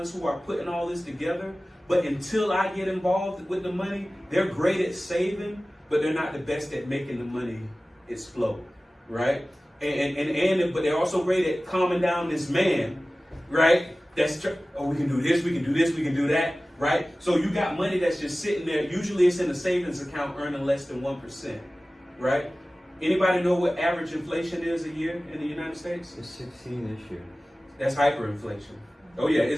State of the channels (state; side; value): normal; both; correlation 0.97